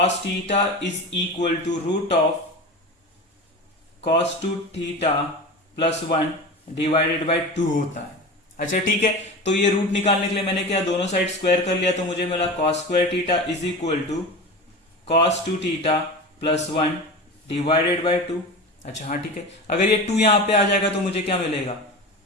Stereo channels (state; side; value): normal; both; correlation 0.29